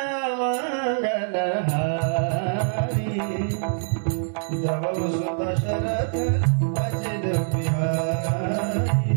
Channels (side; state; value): left; silent; digital silence